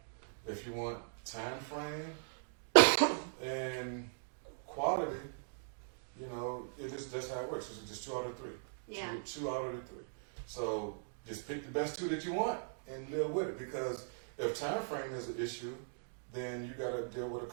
If you want time frame and quality, that's how it works. It's just 2 out of 3. Yeah. 2 out of the 3. So just pick the best 2 that you want and live with it. Because if time frame is an issue, then you got to deal with a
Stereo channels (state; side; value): silent; left; digital silence